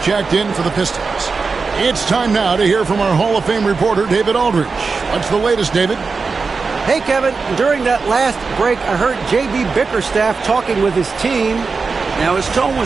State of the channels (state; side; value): quieter; left; 4.6 dB